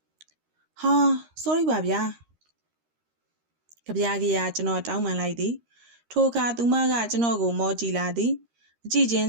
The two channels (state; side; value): late; left; 13 ms